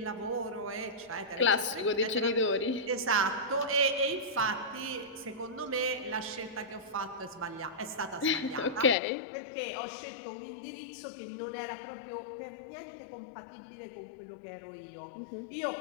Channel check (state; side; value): drops out; right; at 9.0 s